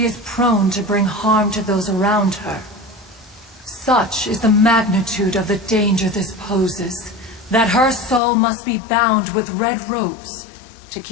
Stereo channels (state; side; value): drops out; right; at 8.2 s